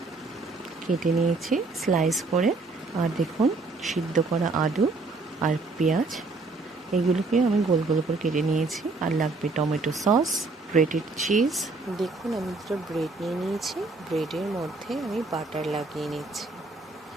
কেটে নিয়েছি স্লাইস করে, আর দেখুন সিদ্ধ করা আলু আর পেঁয়াজ, এগুলোকে আমি গোল গোল করে কেটে নিয়েছি। আর লাগবে টমেটো সস, গ্রেটেড চিজ। দেখুন, আমি দুটো ব্রেড নিয়ে নিয়েছি। ব্রেডের মধ্যে আমি বাটার লাগিয়ে নিচ্ছি।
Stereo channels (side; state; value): left; quieter; 3.6 dB